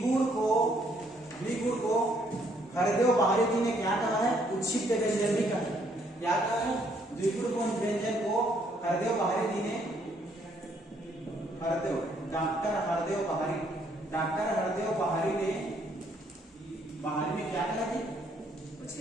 को हरदेव बाहरी जी ने क्या कहा है, उच्छिष्ट व्यंजन भी कहा है। क्या कहा है, द्विगुण व्यंजन को हरदेव बाहरी जी ने, डॉक्टर हरदेव बाहरी ने क्या कहा थी,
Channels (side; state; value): both; normal; correlation 0.68